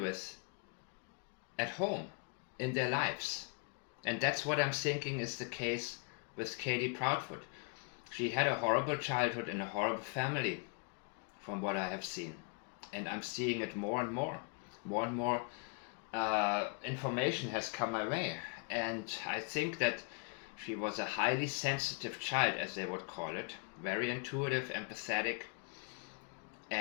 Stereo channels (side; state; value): right; quieter; 37.5 dB